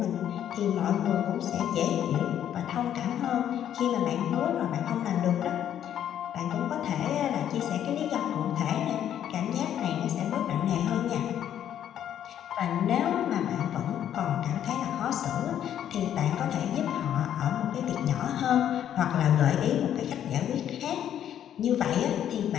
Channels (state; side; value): quieter; right; 10.3 dB